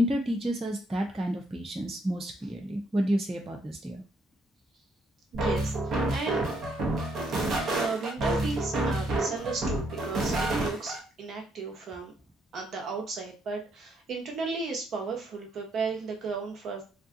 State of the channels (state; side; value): normal; both; correlation 0.73